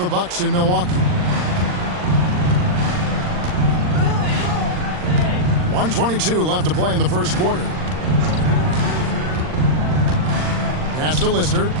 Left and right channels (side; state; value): left; late; 39 ms